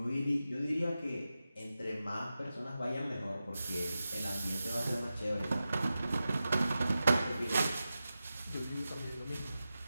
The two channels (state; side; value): inverted; both; correlation -0.92